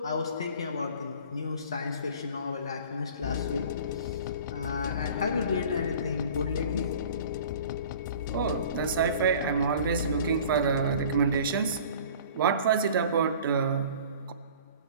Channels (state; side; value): inverted; both; correlation -0.45